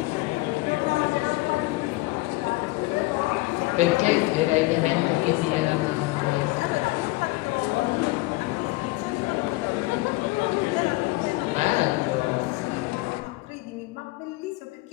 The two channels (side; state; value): right; quieter; 21.1 dB